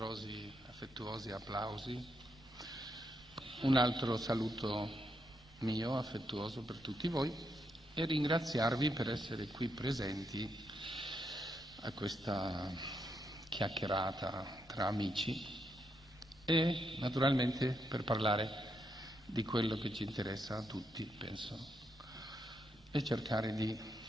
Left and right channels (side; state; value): both; normal; correlation 0.79